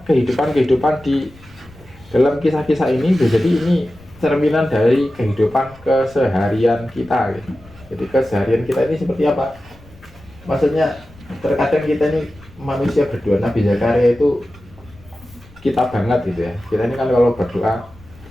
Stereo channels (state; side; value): noise; left; rumble, 24 dB below the sound